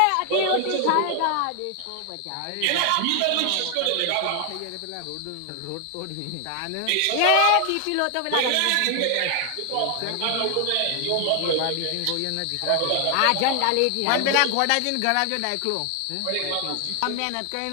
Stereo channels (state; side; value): different; both; correlation 0.00